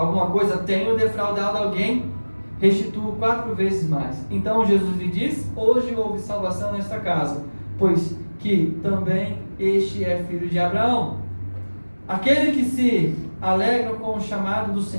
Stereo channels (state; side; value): inverted; both; correlation -1.00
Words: coisa tenho defraudado alguém, restituo 4 vezes mais. Então Jesus lhe disse: hoje houve salvação nesta casa, pois que também este é filho de Abraão. Aquele que se alegra com o chamado do